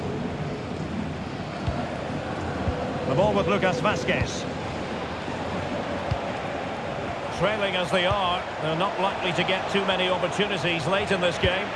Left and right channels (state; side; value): identical; both; correlation 1.00